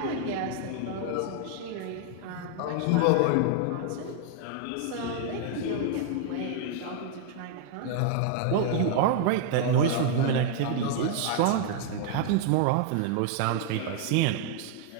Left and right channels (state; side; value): different; both; correlation 0.00